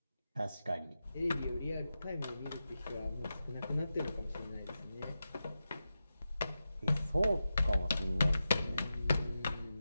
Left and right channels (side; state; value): both; inverted; correlation -0.91